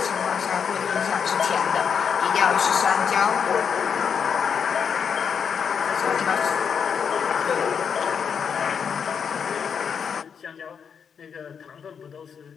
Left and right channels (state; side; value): quieter; right; 6.9 dB